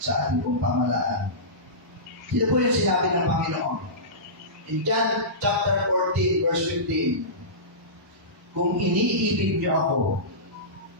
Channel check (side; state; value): both; normal; correlation -0.20